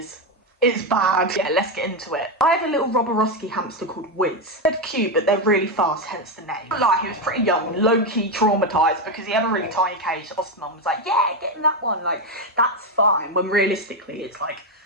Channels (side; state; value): both; normal; correlation 0.09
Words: It's bad. Yeah, let's get into it. I had a little Robberowski hamster called Wiz. They're cute, but they're really fast, hence the name. But like, he was pretty young, low-key traumatised because he had a really tiny cage. The foster mum was like, yeah, get in that one. Like, that's fine. When realistically, it's like,